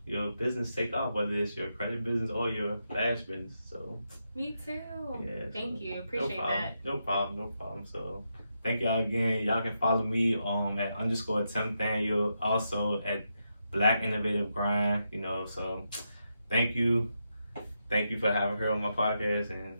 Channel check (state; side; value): inverted; both; correlation -0.84